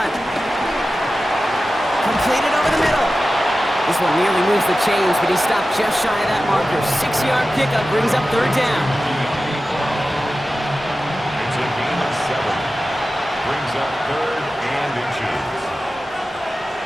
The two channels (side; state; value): both; normal; correlation 0.94